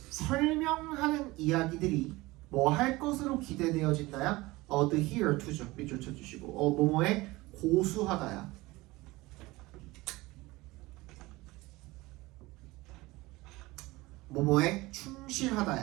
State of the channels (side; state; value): left; quieter; 20.7 dB